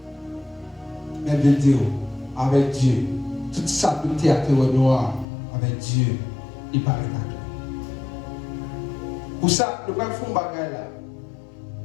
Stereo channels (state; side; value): drops out; right; at 5.2 s